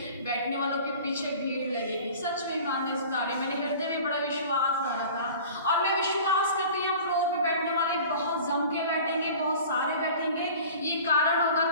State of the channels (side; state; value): both; inverted; correlation -0.42